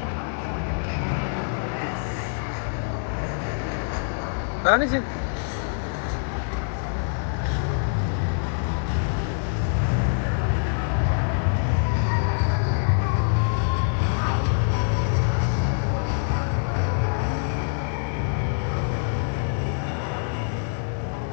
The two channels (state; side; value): silent; right; 59 dB below the other